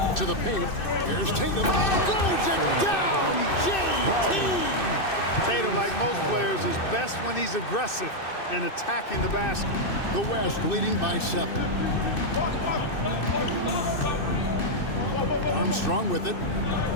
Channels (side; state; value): right; late; 2.6 ms